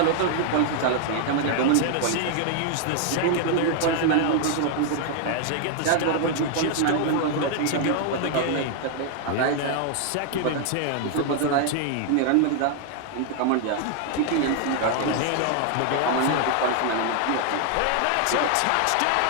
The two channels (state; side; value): different; both; correlation 0.00